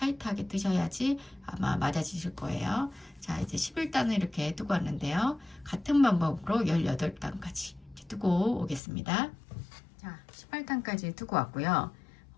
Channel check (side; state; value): right; drops out; at 8.8 s